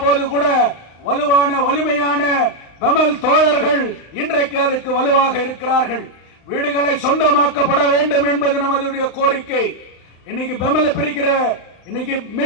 போது கூட வலுவான, வலிமையான பெமல் தோழர்கள் இன்றைக்கு அதுக்கு வலுவாக இருக்கிறார்கள். வீடுகளை சொந்தமாக்கப்பட வேண்டும் என்பது நமது கோரிக்கை. இன்னைக்கு பெமல பிரிக்கிற, இன்னைக்கு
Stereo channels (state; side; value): late; right; 35 ms